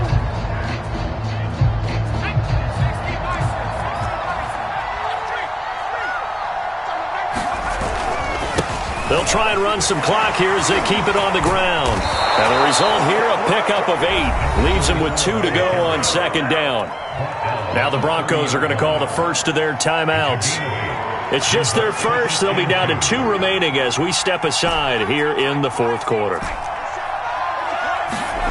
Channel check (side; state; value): both; identical; correlation 1.00